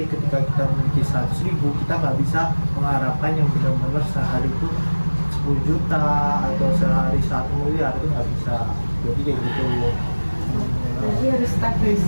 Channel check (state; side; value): inverted; both; correlation -1.00